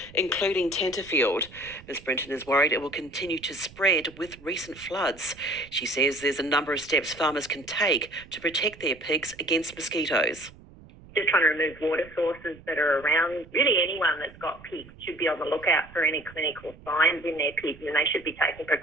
including Tenterfield. Ms Britton is worried it will continue to spread with recent floods. She says there's a number of steps farmers can take to protect their pigs against mosquitoes. Just trying to remove water sources that are around. Really anyone that's got pigs should be on the lookout for any clinical signs in their pigs, and they should be taking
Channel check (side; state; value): right; noise; rumble, 21 dB below the sound